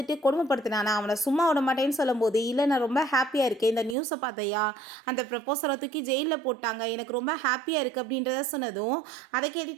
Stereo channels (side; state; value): left; drops out; at 4.0 s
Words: கொடுமைப்படுத்தினானா, அவனை சும்மா விட மாட்டேன்னு சொல்லும்போது, இல்லை நான் ரொம்ப ஹாப்பியாக இருக்கேன், இந்த நியூஸை பார்த்தையா, அந்த ப்ரப்போசலை தூக்கி ஜெயிலில் போட்டாங்க, எனக்கு ரொம்ப ஹாப்பியாக இருக்குது அப்படின்றத சொன்னதும் அதை